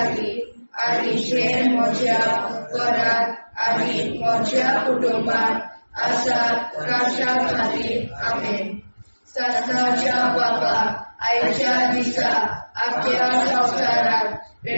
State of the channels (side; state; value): both; inverted; correlation -1.00